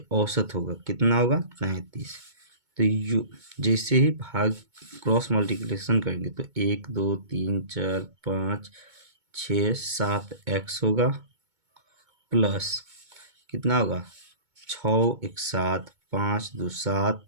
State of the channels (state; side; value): late; left; 2.2 ms